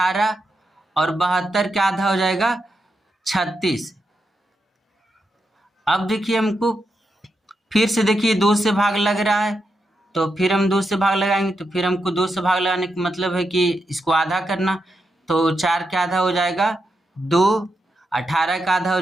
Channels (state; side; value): normal; both; correlation 0.85